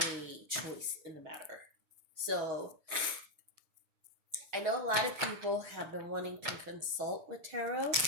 choice in the matter. So I know a lot of people have been wanting to consult with tarot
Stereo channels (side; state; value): left; late; 6.3 ms